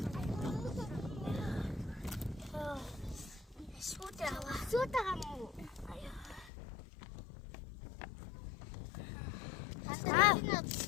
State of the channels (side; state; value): right; drops out; at 6.5 s